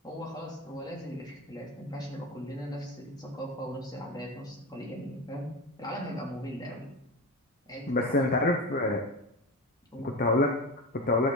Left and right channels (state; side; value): normal; both; correlation 0.24